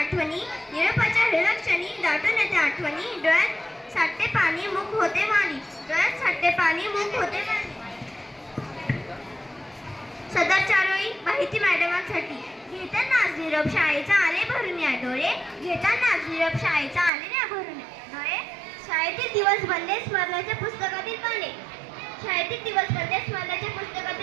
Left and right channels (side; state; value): left; drops out; at 17.1 s